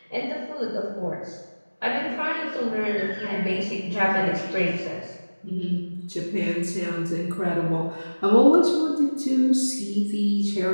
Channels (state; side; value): inverted; both; correlation -1.00